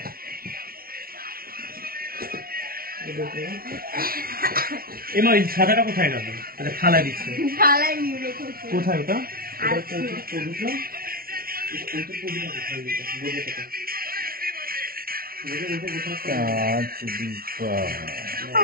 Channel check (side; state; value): left; late; 0.43 ms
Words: এমা ওই সাদাটা কোথায় গেল? আচ্ছা থালায় দিচ্ছে। থালায় নিয়ে রেখেছি। কোথায় ওটা?